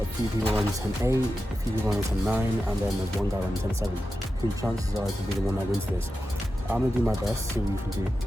a few people running 10:8, a few people running 10:9, and then there's one guy running 10:7. The chances are to be the one that wins this. I'm gonna do my best, see what we can do.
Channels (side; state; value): both; normal; correlation 0.91